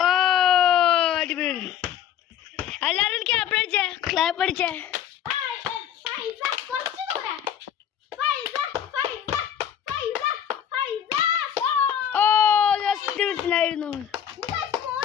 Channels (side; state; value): right; quieter; 9.6 dB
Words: എല്ലാരും ക്ലാപ്പ് അടിച്ചേ, ക്ലാപ്പ് അടിച്ചേ. ഓ ജസ്റ്റ് മിസ്സിലായിരുന്നു.